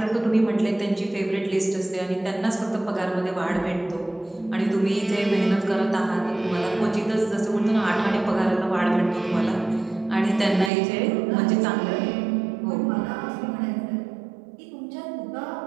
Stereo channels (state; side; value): drops out; left; at 10.7 s